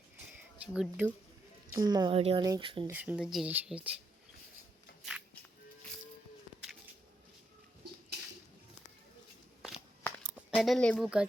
গুড্ডু মামারি অনেক সুন্দর সুন্দর জিনিস হয়েছে। এটা লেবু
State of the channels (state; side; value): normal; both; correlation 0.80